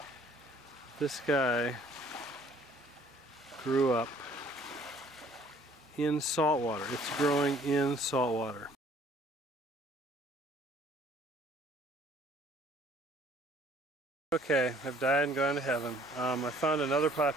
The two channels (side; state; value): both; normal; correlation 0.57